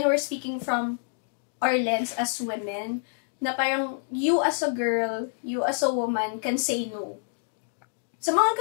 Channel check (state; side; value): silent; right; digital silence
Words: we're speaking from our lens as women, na parang you as a girl, you as a woman can say no. Sa mga